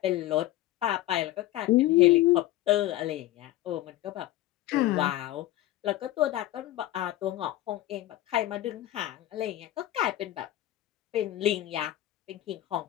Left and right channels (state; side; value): quieter; right; 15.1 dB